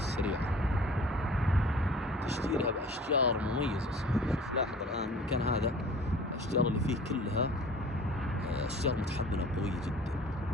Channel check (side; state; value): both; normal; correlation 0.46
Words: تشجيرها بأشجار مميزة. شوف لاحظ الآن المكان هذا الأشجار اللي فيه كلها أشجار متحملة قوية جدا،